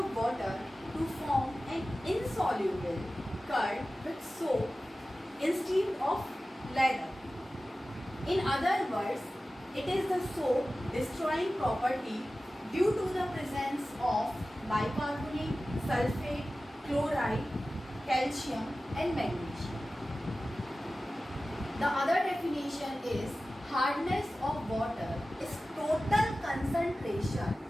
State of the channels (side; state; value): both; normal; correlation 0.96